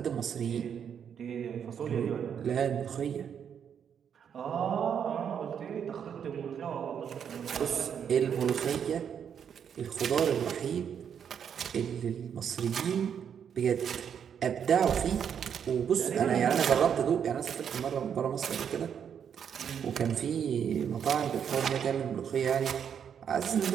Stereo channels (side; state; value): left; quieter; 8.0 dB